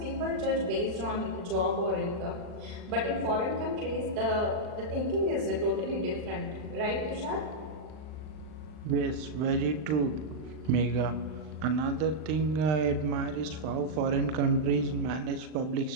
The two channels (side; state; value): left; late; 39 ms